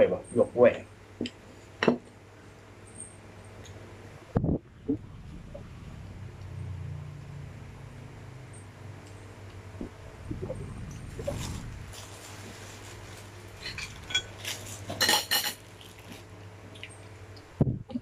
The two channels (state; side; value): identical; both; correlation 1.00